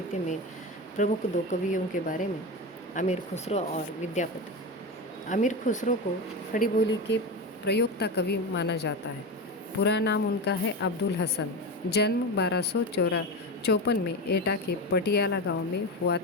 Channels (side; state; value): both; normal; correlation 0.21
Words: में प्रमुख दो कवियों के बारे में, अमीर खुसरो और विद्यापति। अमीर खुसरो को खड़ी बोली के प्रयोक्ता कवि माना जाता है। पूरा नाम उनका है अब्दुल हसन। जन्म 1254 में एटा के पटियाला गांव में हुआ